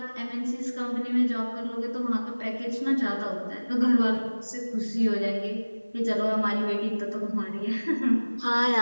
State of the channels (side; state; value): both; inverted; correlation -1.00